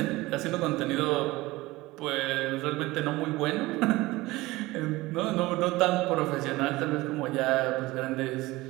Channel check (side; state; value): left; quieter; 19.9 dB